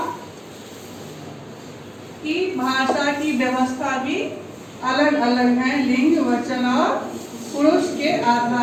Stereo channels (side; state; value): both; identical; correlation 1.00